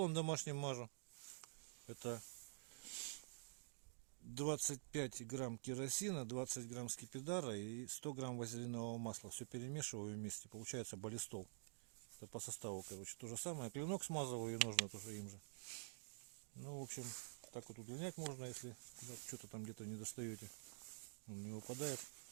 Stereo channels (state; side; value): silent; left; digital silence